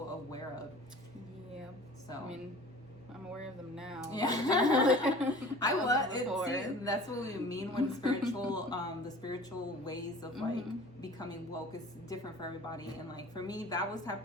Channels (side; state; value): both; normal; correlation 0.44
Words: aware of. Yeah. So I mean, I'm aware of them now. Yeah. I was. See, that's what we mean when spiritual, the spiritual ways of like becoming woke is different for everybody. And like for me, that was